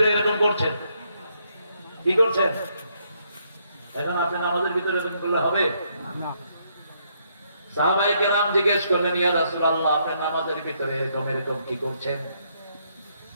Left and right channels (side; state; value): both; inverted; correlation -0.73